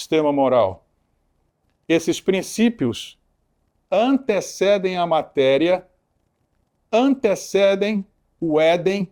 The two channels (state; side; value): identical; both; correlation 1.00